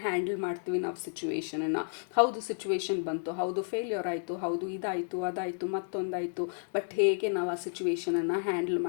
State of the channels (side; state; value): right; silent; digital silence